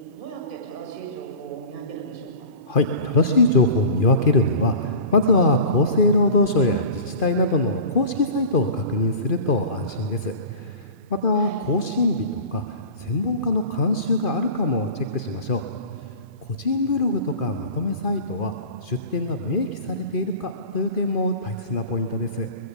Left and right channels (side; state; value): right; late; 2.4 ms